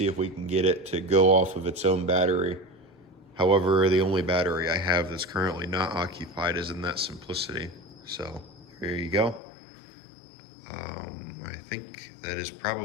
if we can get it to go off of its own battery. However, the only battery I have that's currently not occupied is in that Simplicity. So here you go. I think that is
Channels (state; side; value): drops out; right; at 9.4 s